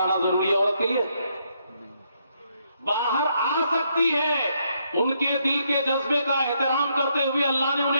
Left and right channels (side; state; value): both; inverted; correlation -0.75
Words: ضروری ہے عورت کے لیے؟ باہر آ سکتی ہے. ان کے دل کے جذبے کا احترام کرتے ہوئے اللہ نے